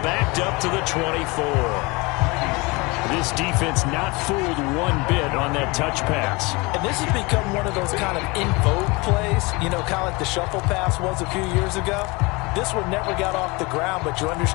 backed up to the 24. This defense not fooled one bit on that touch pass. And this has become one of those kind of in vogue plays, you know, kind of like the shuffle pass was a few years ago. This one never got off the ground, but you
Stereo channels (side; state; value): right; quieter; 25.6 dB